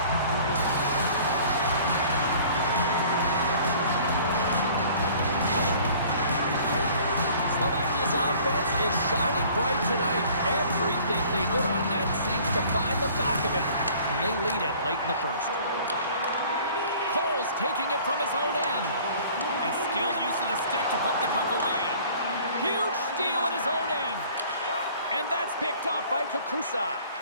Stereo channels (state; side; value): inverted; both; correlation -0.51